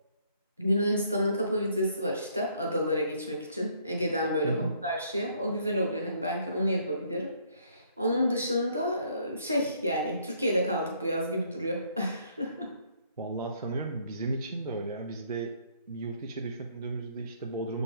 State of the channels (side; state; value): both; inverted; correlation -0.66